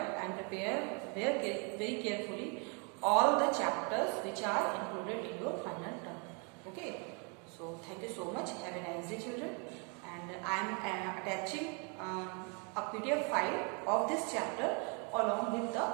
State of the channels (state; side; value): quieter; left; 35.8 dB